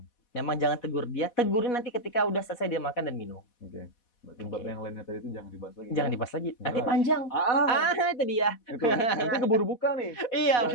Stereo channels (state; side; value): late; right; 4.1 ms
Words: memang jangan tegur dia. Tegurin nanti ketika udah selesai dia makan dan minum. Berarti bab yang lainnya tadi itu jangan dibahas lagi. Jangan dibahas lagi. Nanti panjang. Itu dia. Itu. Nanti keburu buka nih. Iya